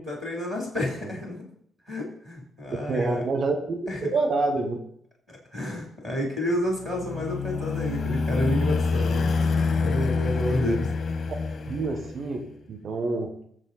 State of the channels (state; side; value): normal; both; correlation 0.80